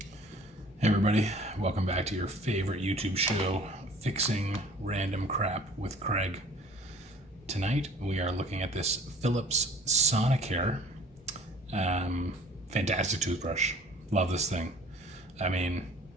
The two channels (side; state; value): both; normal; correlation 0.50